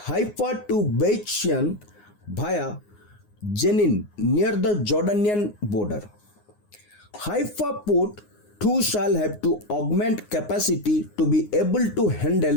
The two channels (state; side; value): late; right; 9.6 ms